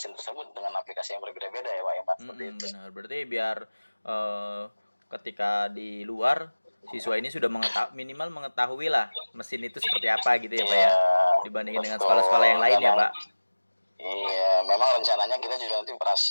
tersebut dengan aplikasi yang berbeda-beda ya Pak Iman. Benar, berarti biar ketika di luar siswa ini sudah minimal mengetahui lah mesin itu seperti apa gitu ya Pak ya, dibandingin dengan sekolah-sekolah yang lain ya Pak. Iya, memang rencananya kita juga nanti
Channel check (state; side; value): inverted; both; correlation -1.00